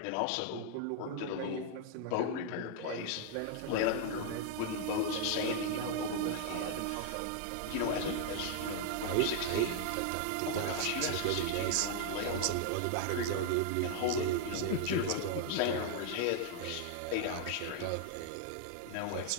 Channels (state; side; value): different; both; correlation 0.00